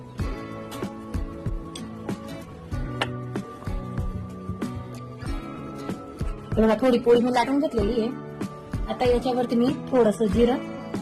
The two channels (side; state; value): both; identical; correlation 1.00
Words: बघा थोडी पोळी मी लाटून घेतलेली आहे. आता याच्यावरती मी थोडस जिरं,